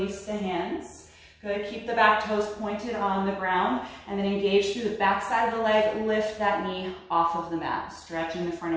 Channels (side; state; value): both; identical; correlation 1.00